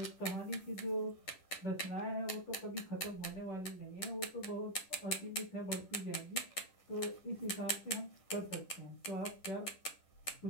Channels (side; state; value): right; late; 10 ms